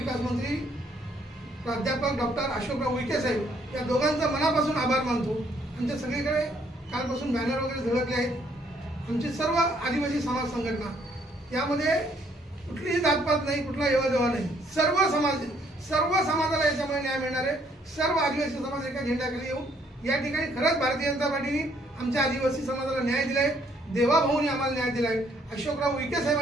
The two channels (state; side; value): normal; both; correlation 0.67